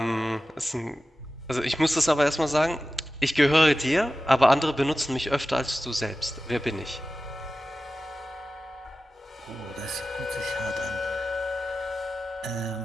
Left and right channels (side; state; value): both; normal; correlation 0.95